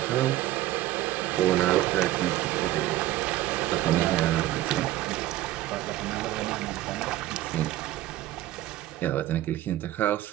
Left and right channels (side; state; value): left; quieter; 15.1 dB